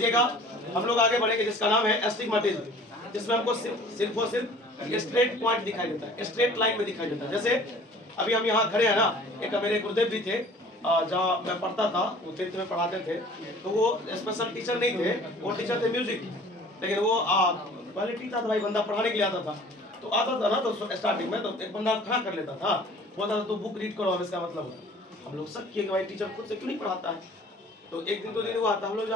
हम लोग आगे बढ़ेंगे, जिसका नाम है एस्टिग्मेटिज्म, जिसमें हमको सिर्फ और सिर्फ स्ट्रेट पॉइंट दिखाई देता है, स्ट्रेट लाइन में दिखाई देता है। जैसे अभी हम यहाँ खड़े हैं ना, एक मेरे गुरुदेव भी थे, जहाँ मैं पढ़ता था, वो 10th में पढ़ाते थे, तो वो स्पेशल टीचर नहीं थे, वो टीचर थे म्यूजिक, लेकिन वो क्वालिटी था, भाई बंदा पढ़ाने के लिए आता था, तो आता था ना, तो स्टार्टिंग में तो एक बंदा खड़ा कर लेता था, बोलता था तो बुक रीड करो, इसका मतलब हम लोग शक किए कि भाई टीचर खुद से क्यों नहीं पढ़ाता है। तो एक दिन 2 दिन हुआ था, हम लोग जो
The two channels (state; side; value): normal; both; correlation 0.49